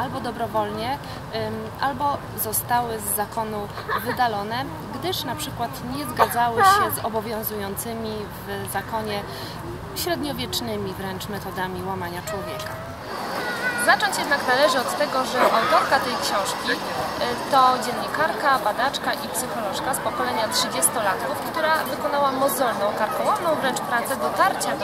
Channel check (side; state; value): both; identical; correlation 1.00